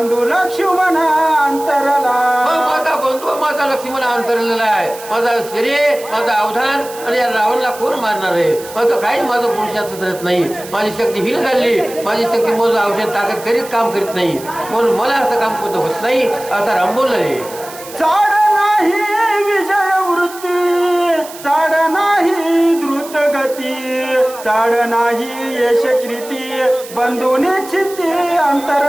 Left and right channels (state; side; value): noise; right; hiss, 16 dB below the sound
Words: लक्ष्मण अंतरला. माझा बंधू माझा लक्ष्मण अंतरलेला आहे. माझा शरीर माझा अवधान आणि या रावणला कोण मारणार आहे. माझं काही माझं पुरुषाचं करत नाही. माझी शक्ती हीन झाली. माझी शक्ती माझं औषध ताकद करीत काम करीत नाही म्हणून मला असं काम कोणतं होत नाही असा राम बोलले. चाड नाही विजय वृत्ती चाड नाही द्रुत गती चाड नाही यश कृती बंधू निश्चिती